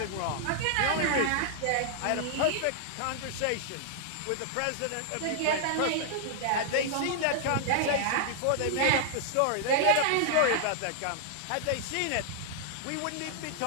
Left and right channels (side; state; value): both; different; correlation -0.01